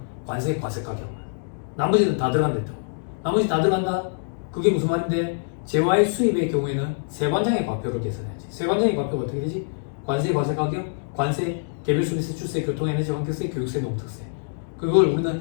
관세 과세 가격만. 나머지는 다 들어간다 했다고. 나머지 다 들어간다? 그게 무슨 말인데? 재화의 수입의 경우에는 세관장의 과표를 계산해야지. 세관장의 과표가 어떻게 되지? 관세 과세 가격, 관세, 개별 소비세, 출세, 교통에너지 환경세, 교육세, 농특세. 그걸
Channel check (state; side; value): silent; right; digital silence